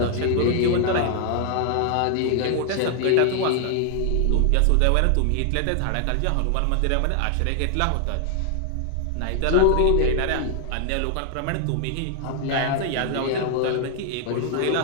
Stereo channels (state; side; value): different; both; correlation 0.00